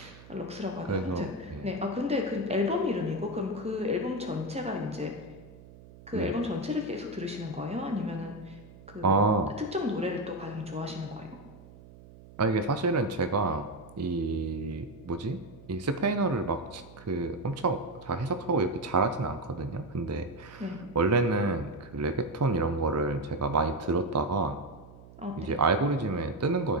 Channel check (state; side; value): noise; right; hum, 20 dB below the sound